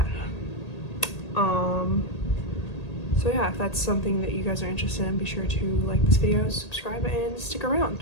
So yeah, if that's something that you guys are interested in, be sure to like this video, subscribe, and stick around.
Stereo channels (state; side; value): late; right; 1.8 ms